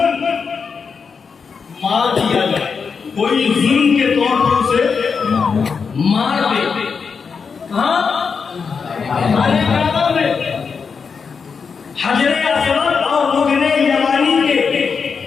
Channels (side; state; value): right; quieter; 5.7 dB